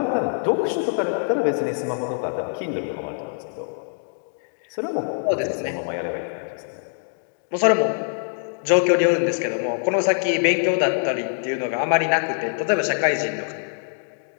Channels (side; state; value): right; silent; digital silence